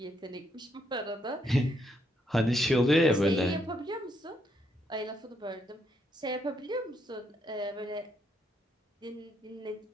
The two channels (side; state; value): both; normal; correlation 0.75